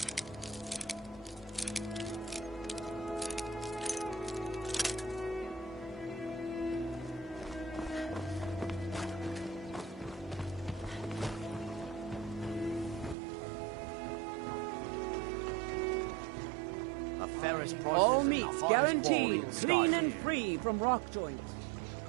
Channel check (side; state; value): left; drops out; at 13.2 s